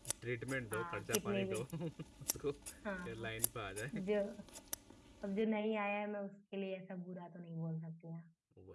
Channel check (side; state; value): both; identical; correlation 1.00